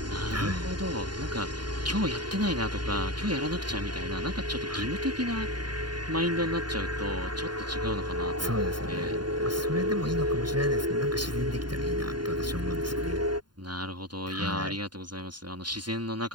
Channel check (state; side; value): late; left; 0.71 ms